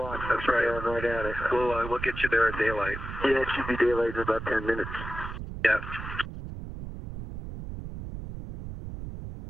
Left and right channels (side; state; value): right; noise; rumble, 8 dB below the sound